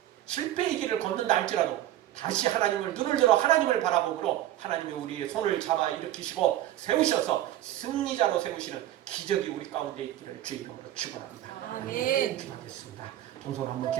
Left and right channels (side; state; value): left; quieter; 13.3 dB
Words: 실패의 길을 걷는다 할지라도 다시 하나님을 눈을 들어 하나님을 바라보므로 하나님이 우리의 손을 잡아 일으키시고 세우셔서 승리자로 세우시는 기적이 우리 가운데 있기를 주의 이름으로 축원합니다. 아멘. 기도하겠습니다. 동선 한번